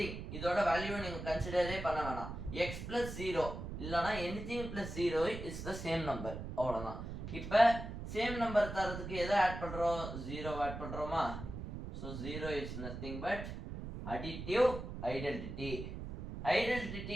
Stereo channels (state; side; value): noise; right; rumble, 8 dB below the sound